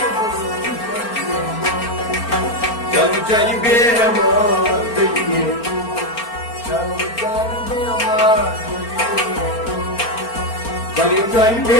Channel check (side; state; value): right; late; 4.4 ms